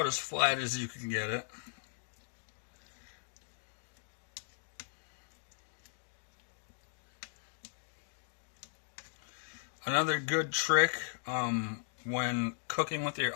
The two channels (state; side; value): silent; right; digital silence